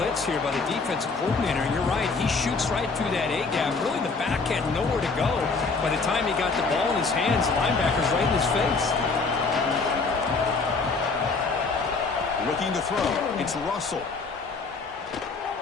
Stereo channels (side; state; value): right; quieter; 4.3 dB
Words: here by the defensive coordinator. And you're right, he shoots right through that A-gap. Really, the back had nowhere to go. By the time he got the ball in his hands, the linebacker's right in his face. Looking to throw. It's Russell.